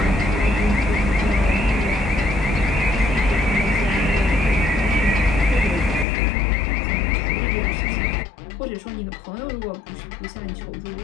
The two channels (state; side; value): drops out; right; at 6.1 s